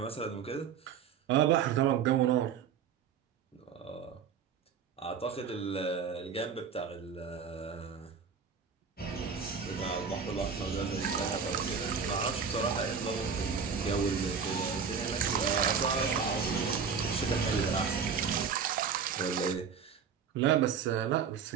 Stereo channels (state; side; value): quieter; left; 6.5 dB